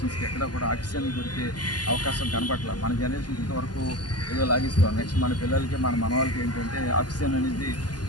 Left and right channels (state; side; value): late; right; 0.70 ms